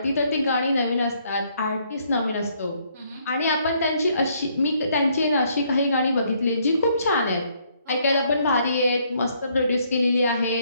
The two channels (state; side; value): inverted; both; correlation -0.69